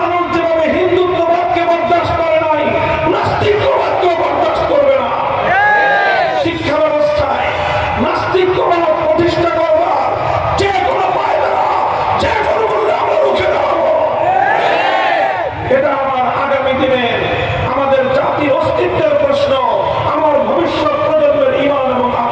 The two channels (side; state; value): both; identical; correlation 1.00